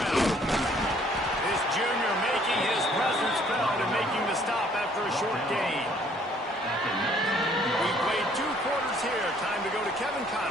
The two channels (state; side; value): normal; both; correlation 0.61